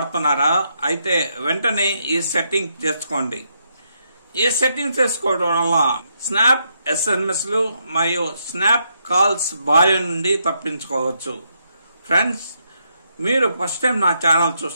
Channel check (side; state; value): both; inverted; correlation -0.78